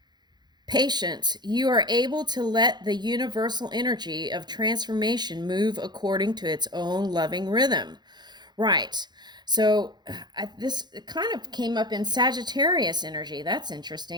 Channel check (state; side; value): late; left; 0.21 ms